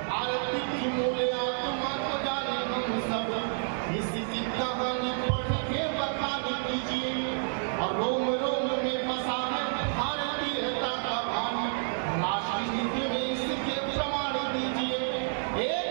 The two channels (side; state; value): left; silent; digital silence